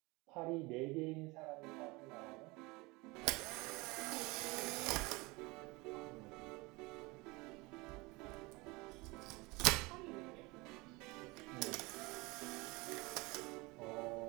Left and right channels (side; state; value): left; quieter; 24.4 dB